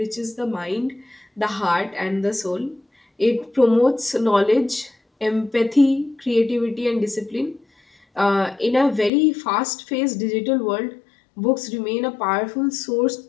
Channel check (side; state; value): right; drops out; at 9.1 s